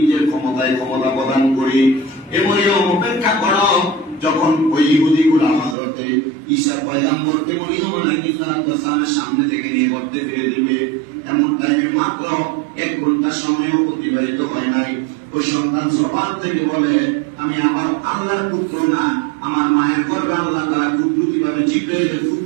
ক্ষমতায় ক্ষমতা প্রদান করি। হে মরিয়ম, অপেক্ষা করো, যখন ওই ইহুদিগুলা হযরতে ঈসা পয়গম্বরকে মরিয়ম আলাইহিস সালামের সামনে থেকে নিয়ে গর্তে ফেলে দিবে, এমন টাইমে মাত্র 1 ঘন্টা সময়ও অতিবাহিত হয় নাই, ওই সন্তান জবান থেকে বলে, আমি আমার আল্লাহর পুত্র না, আমার মায়ের গর্ভে আল্লাহ তাআলা কুদরতিভাবে জিবরাইলের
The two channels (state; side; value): drops out; left; at 5.8 s